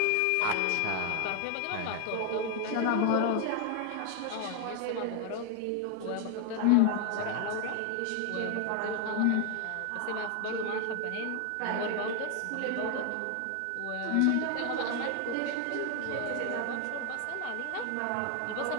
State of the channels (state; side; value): different; both; correlation 0.01